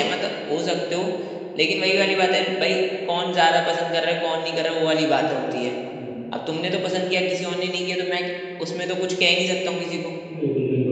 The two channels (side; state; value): both; identical; correlation 1.00